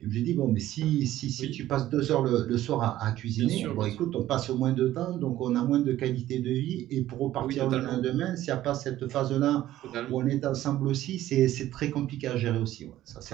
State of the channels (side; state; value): left; quieter; 14.0 dB